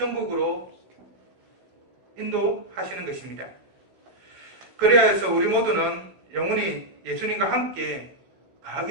인도하시는 것입니다. 그래야 해서 우리 모두는 영원히 예수님과 함께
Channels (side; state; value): left; late; 16 ms